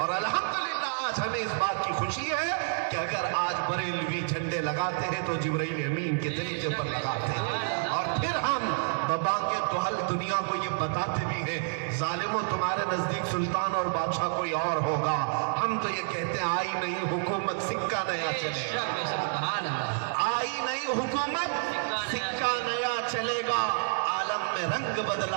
الحمدللہ آج ہمیں اس بات کی خوشی ہے کہ اگر آج بریلوی جھنڈے لگاتے ہیں تو جبرائیل امین کے طریقے پر لگاتے ہیں، اور پھر ہم ببانگے توحل دنیا کو یہ بتاتے بھی ہیں ظالموں تمہارے نزدیک سلطان اور بادشاہ کوئی اور ہوگا، ہم تو یہ کہتے ہیں آئی نہیں حکومت سکہ نیا چلے گا، آئی نہیں حکومت سکہ نیا چلے گا، عالم میں رنگ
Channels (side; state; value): left; silent; digital silence